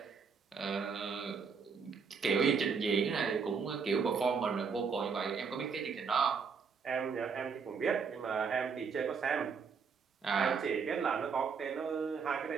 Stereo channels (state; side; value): quieter; left; 5.7 dB